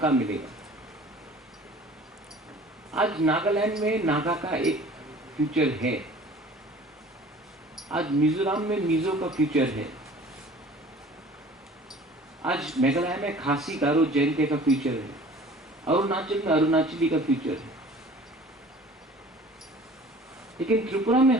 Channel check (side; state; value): both; normal; correlation 0.47